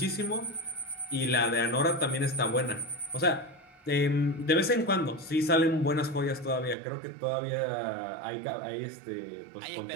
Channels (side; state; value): left; drops out; at 6.8 s